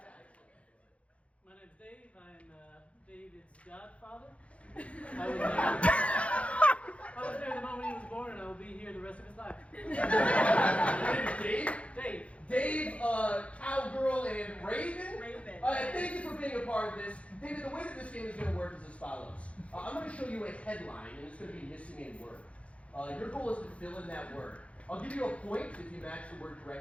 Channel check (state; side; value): late; right; 0.063 ms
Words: My name's Dave. I'm David's godfather. I was there the moment he was born, and I will be here the rest of his life. Dave? Dave. Dave, Cowgirl, and Raven? Raven. Thank you for being a part of this. David, the way that this game is going to work is as follows. I'm going to show you a headline, and it's going to be missing a word. Your goal is to fill in that word. I'll give you a point if you match the word